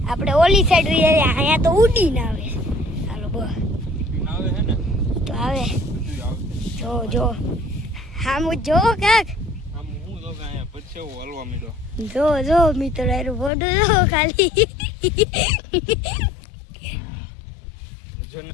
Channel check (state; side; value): drops out; right; at 13.5 s